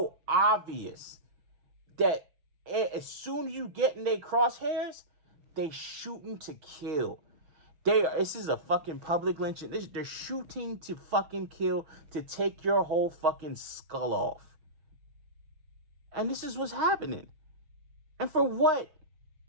obvious that as soon as you get in their crosshairs, they shooting to kill. This is a fucking public lynching. They're shooting to fucking kill, to take your whole fucking skull off. And this is what's happening. And for what?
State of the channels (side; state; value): left; late; 6.4 ms